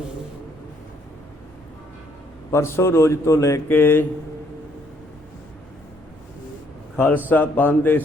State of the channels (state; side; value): normal; both; correlation 0.67